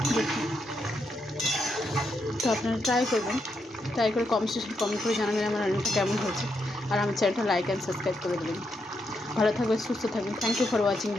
দেখুন, তো আপনারা ট্রাই করবেন, ট্রাই করে কমেন্ট করে জানাবেন আমার রান্নাটা কেমন হয়েছে। আর আমার চ্যানেলটা লাইক অ্যান্ড সাবস্ক্রাইব করে দেবেন। ভালো থাকবেন, সুস্থ থাকবেন। থ্যাংক ইউ ফর ওয়াচিং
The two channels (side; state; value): both; normal; correlation 0.81